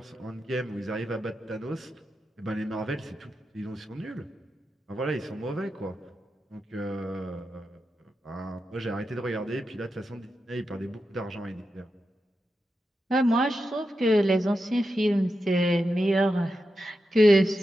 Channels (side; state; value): both; normal; correlation 0.89